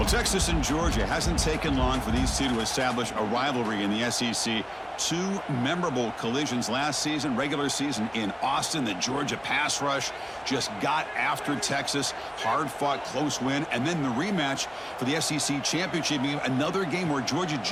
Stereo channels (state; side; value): identical; both; correlation 1.00